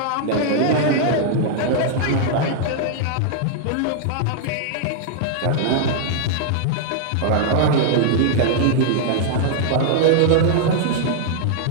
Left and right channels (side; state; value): both; different; correlation -0.01